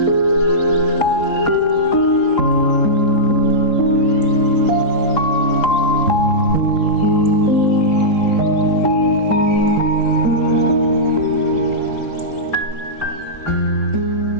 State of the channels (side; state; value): right; late; 3.8 ms